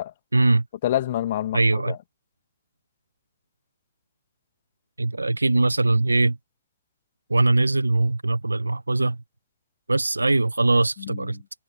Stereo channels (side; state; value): both; inverted; correlation -0.95